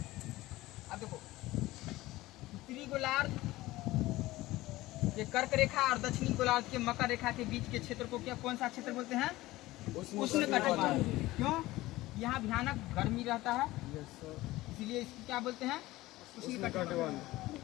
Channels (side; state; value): right; quieter; 18.0 dB